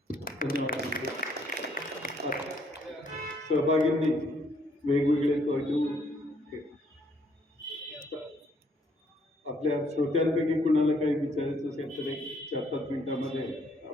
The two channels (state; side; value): normal; both; correlation 0.67